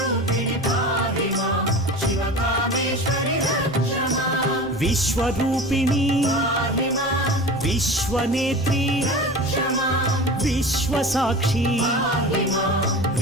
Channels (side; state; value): both; normal; correlation 0.34